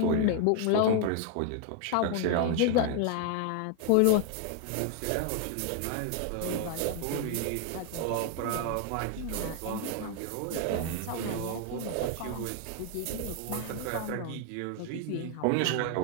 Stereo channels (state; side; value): different; both; correlation 0.00